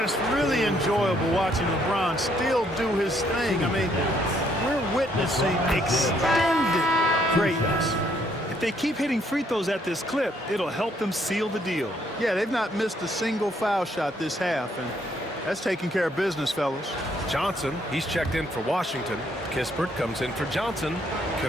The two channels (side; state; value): both; normal; correlation 0.69